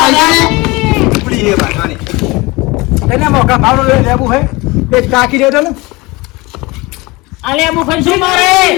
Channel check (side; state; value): right; quieter; 23.3 dB